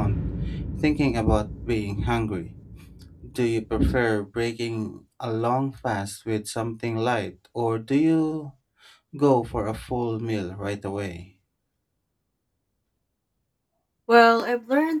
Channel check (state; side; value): identical; both; correlation 1.00